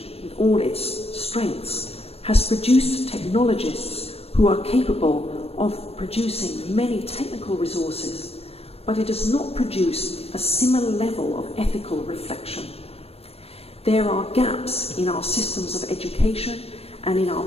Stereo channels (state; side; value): late; right; 0.29 ms